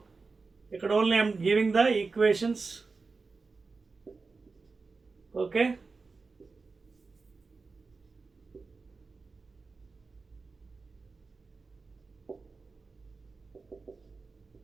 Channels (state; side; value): quieter; left; 4.2 dB